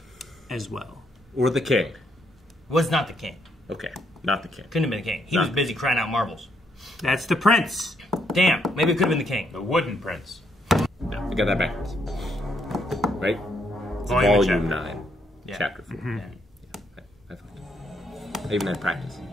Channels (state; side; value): normal; both; correlation 0.74